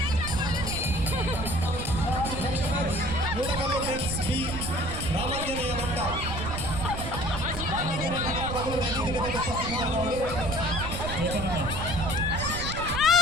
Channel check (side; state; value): right; noise; rumble, 6 dB below the sound